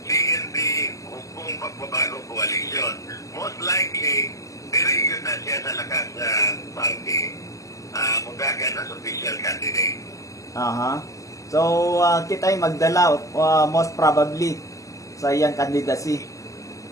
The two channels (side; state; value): right; late; 0.16 ms